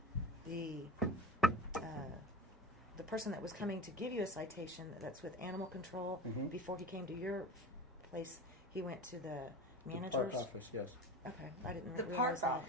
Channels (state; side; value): normal; both; correlation 0.32